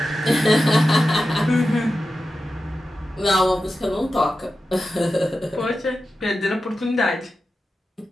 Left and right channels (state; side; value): normal; both; correlation 0.92